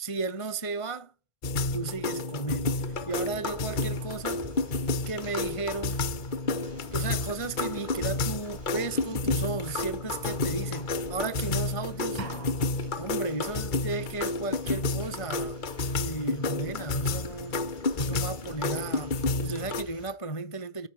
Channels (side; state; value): right; late; 2.2 ms